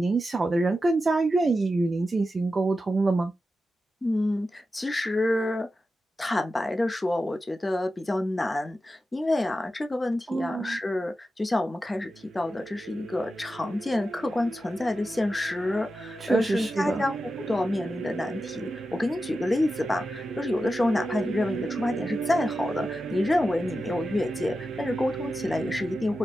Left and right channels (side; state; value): both; normal; correlation 0.91